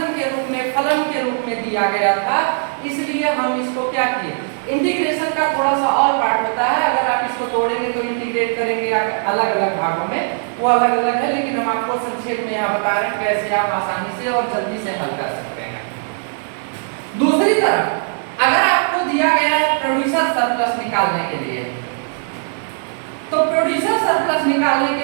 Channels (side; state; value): left; silent; digital silence